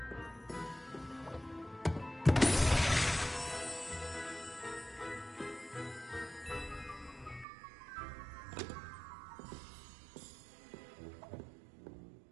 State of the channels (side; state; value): left; drops out; at 7.5 s